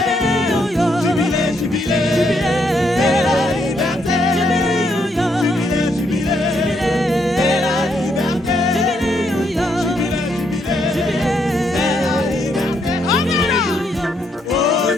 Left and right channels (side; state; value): both; normal; correlation 0.75